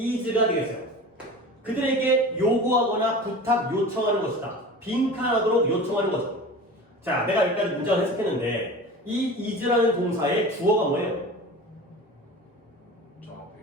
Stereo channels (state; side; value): normal; both; correlation 0.35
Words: 되겠어요. 그들에게 요구하거나 부탁, 요청하는 것이다. 빈칸하도록 요청하는 거죠. 자, 내가 여기까지 문장을 해석했는데 이 is라는 동사의 주어가 뭐예요?